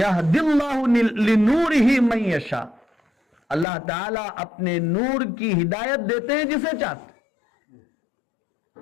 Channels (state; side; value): drops out; right; at 3.7 s